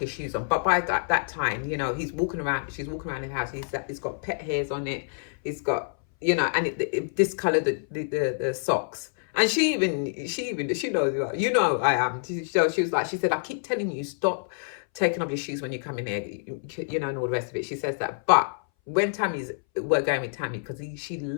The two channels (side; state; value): right; silent; 60 dB below the other